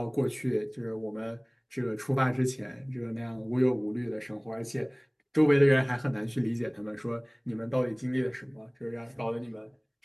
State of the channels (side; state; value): both; identical; correlation 1.00